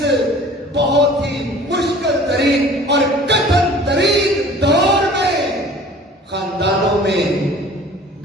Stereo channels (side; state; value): both; normal; correlation 0.47